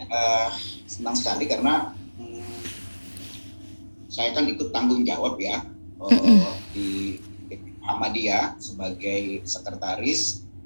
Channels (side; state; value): both; inverted; correlation -1.00